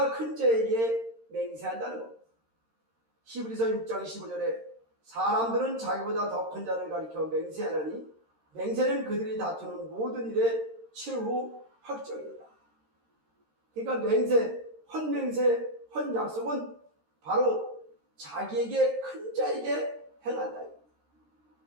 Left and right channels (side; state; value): left; late; 13 ms